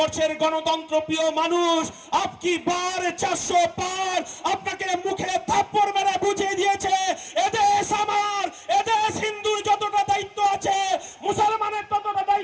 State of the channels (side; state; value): both; identical; correlation 1.00